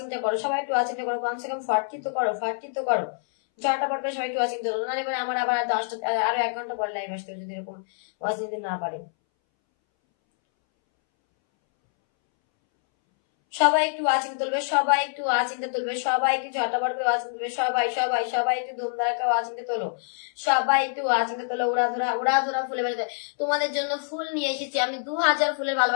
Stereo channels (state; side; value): silent; right; 61 dB below the other